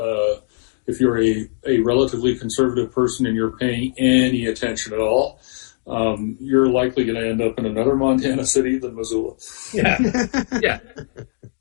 a relatively conservative person and you're paying any attention at all, you're likely going to end up in another Montana city than Missoula. Yeah.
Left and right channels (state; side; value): silent; right; digital silence